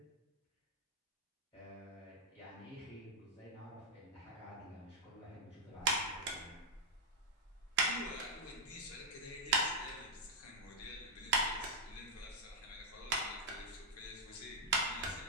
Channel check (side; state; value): both; normal; correlation -0.04